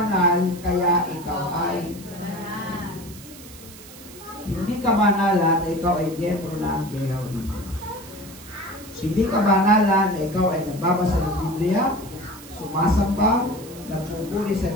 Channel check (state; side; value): noise; right; hiss, 18 dB below the sound